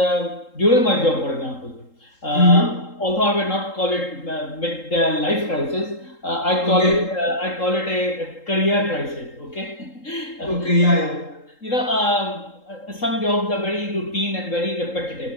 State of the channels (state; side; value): late; right; 3.8 ms